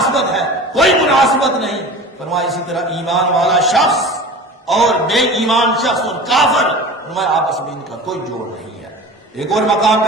ہے، کوئی مناسبت نہیں۔ فرمایا اسی طرح ایمان والا شخص اور بے ایمان شخص اور کافر، فرمایا آپس میں ان کا کوئی جوڑ نہیں ہے۔ ایک اور مقام پہ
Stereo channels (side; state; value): both; normal; correlation 0.36